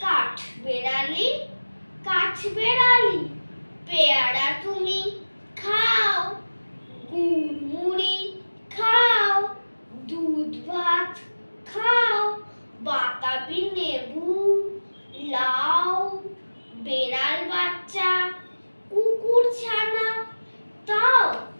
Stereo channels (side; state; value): both; inverted; correlation -1.00